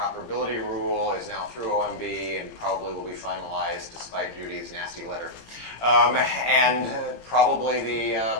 rule is now through OMB and probably will be finalized despite Judy's nasty letter. And probably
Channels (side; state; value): right; late; 18 ms